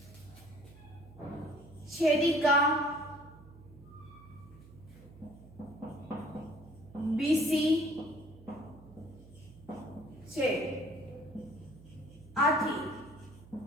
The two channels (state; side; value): noise; right; hum, 20 dB below the sound